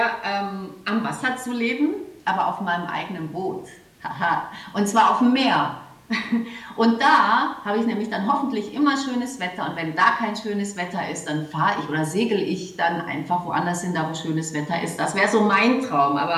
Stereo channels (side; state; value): both; identical; correlation 1.00